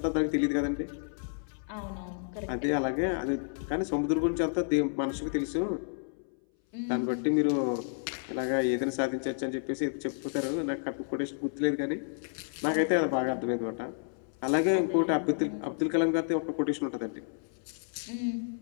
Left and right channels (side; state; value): right; silent; 57 dB below the other